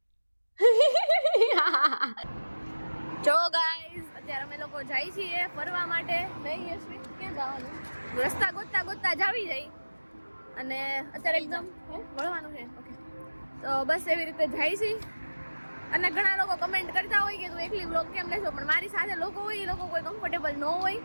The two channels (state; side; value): inverted; both; correlation -1.00